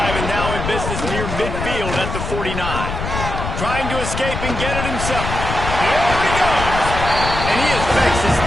and now in business near midfield at the 49. Trying to escape and get it himself. There he goes. And he affects his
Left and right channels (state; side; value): noise; left; rumble, 5 dB below the sound